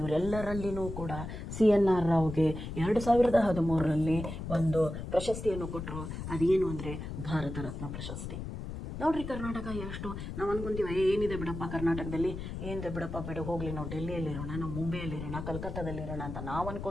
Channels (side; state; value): left; noise; rumble, 7 dB below the sound